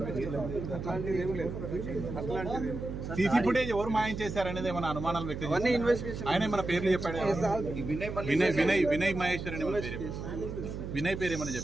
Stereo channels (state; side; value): noise; right; hum, 6 dB below the sound